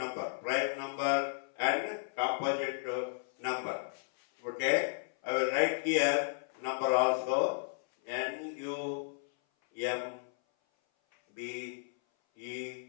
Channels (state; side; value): silent; right; 55 dB below the other